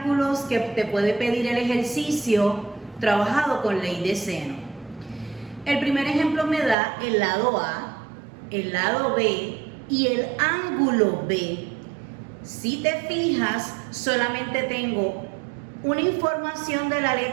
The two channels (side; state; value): left; drops out; at 6.8 s